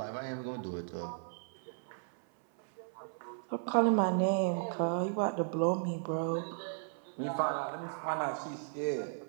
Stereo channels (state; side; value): silent; left; 54 dB below the other